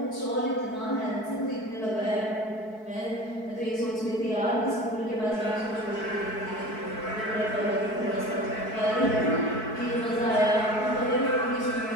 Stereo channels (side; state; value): right; late; 4.6 ms